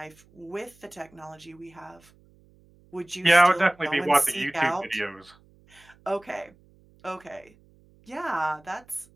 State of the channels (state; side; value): noise; right; hum, 29 dB below the sound